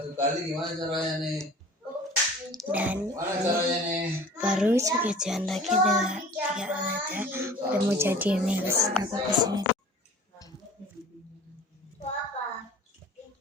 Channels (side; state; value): both; normal; correlation 0.44